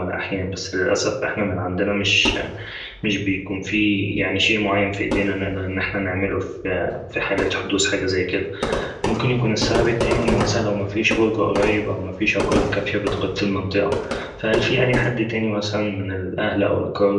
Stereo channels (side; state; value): both; identical; correlation 1.00